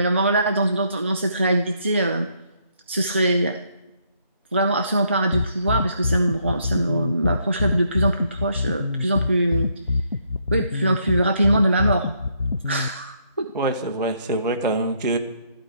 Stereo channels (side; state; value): both; inverted; correlation -0.72